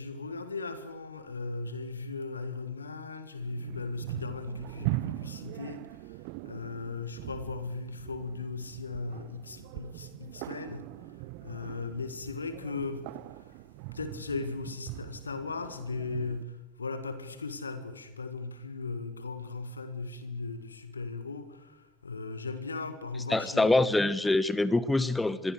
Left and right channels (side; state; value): both; normal; correlation 0.30